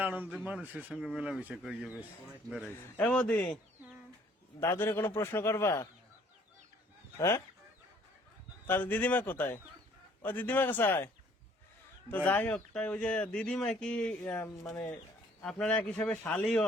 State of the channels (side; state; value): both; normal; correlation 0.59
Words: আনন্দে মানুষের সঙ্গে মেলামেশা করিয়ে বেশ বেড়াইছি। এ বৌদি, দাদুরে কোনো প্রশ্ন করবা? হ্যাঁ, তাহলে দিদিমা কোথায়? ও দিদিমা কোথায়? তো যাই হোক, তাই ওই যে দিদিমা কি মানে আপনার এক হিসাবে শালি